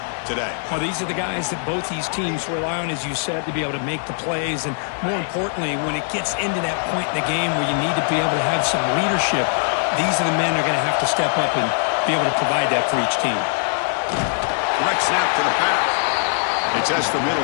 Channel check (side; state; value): right; silent; digital silence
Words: today. Well, these are the guys that both these teams rely on, as you said, to be able to make the plays. And more importantly, when it gets into that point in the game where you need to be able to have some leadership, these are the men that are going to have to step up and be able to provide that for each team. Direct snap to the back. They test the middle